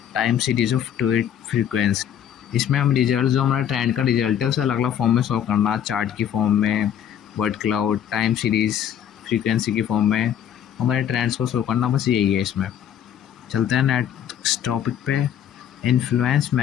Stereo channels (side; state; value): right; quieter; 9.6 dB